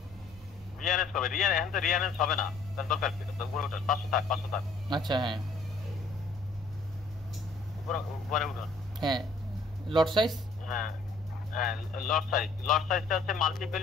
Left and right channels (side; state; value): right; quieter; 3.7 dB